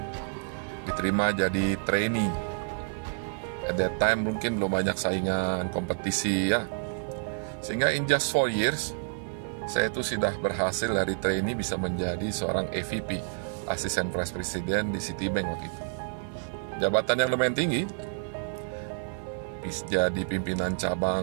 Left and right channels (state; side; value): silent; left; 58 dB below the other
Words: diterima jadi trainee. At that time mungkin belum banyak saingan, kompetisi ya. Sehingga in just 4 years, saya itu sudah berhasil dari trainee bisa menjadi seorang AVP, Assistant Vice President di Citibank waktu itu. Jabatan yang lumayan tinggi, bisa jadi pimpinan